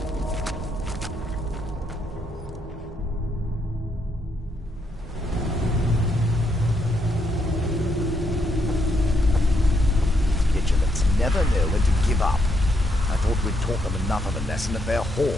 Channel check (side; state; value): both; normal; correlation 0.77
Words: Never know when to give up. I thought we'd taught them enough of a lesson at their